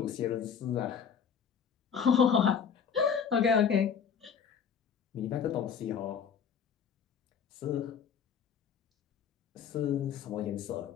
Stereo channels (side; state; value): right; quieter; 7.3 dB